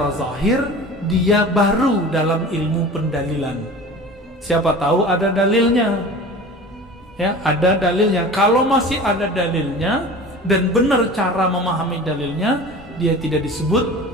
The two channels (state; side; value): normal; both; correlation 0.38